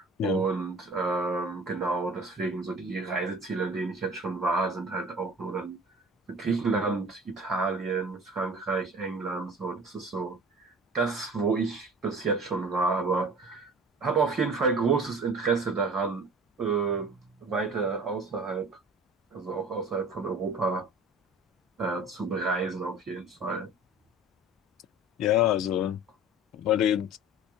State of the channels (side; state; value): both; normal; correlation 0.42